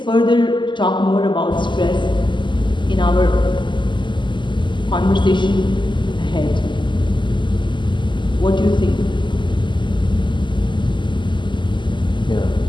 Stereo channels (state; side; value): late; right; 0.23 ms